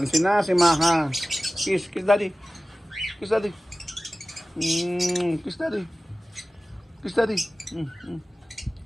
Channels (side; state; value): both; normal; correlation 0.96